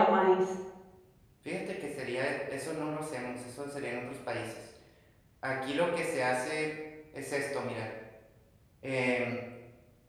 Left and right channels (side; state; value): both; identical; correlation 1.00